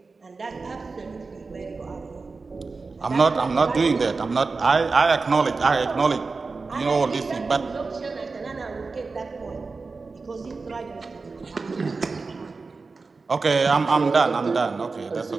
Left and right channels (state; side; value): quieter; left; 4.2 dB